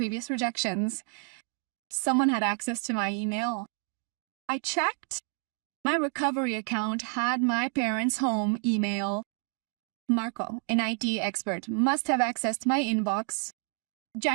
rejections? Someone had access to my email. I checked. My recovery account had my parents' home email. Marco, an IT expert, must have accessed my inbox.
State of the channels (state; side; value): quieter; left; 37.1 dB